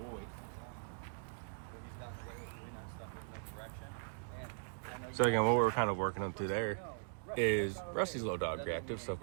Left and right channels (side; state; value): left; silent; digital silence